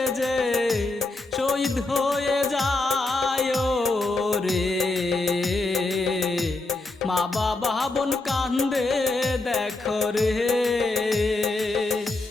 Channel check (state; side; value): quieter; right; 3.1 dB